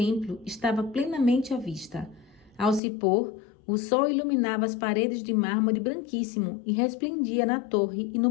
estava plenamente à vista. Ao se pôr, o sol iluminava as paredes de mármore branquíssimo e resplendia na torre e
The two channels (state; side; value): drops out; right; at 2.8 s